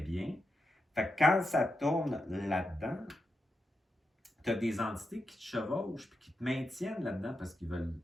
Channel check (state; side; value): normal; both; correlation 0.86